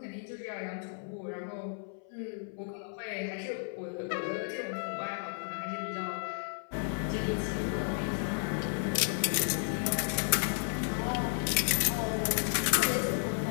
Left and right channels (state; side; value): silent; right; 56 dB below the other